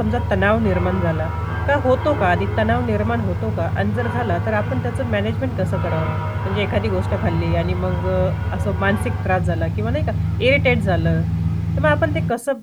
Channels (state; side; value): identical; both; correlation 1.00